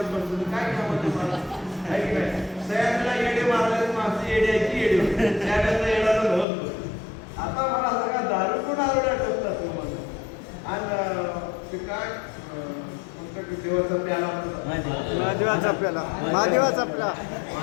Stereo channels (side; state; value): right; drops out; at 6.5 s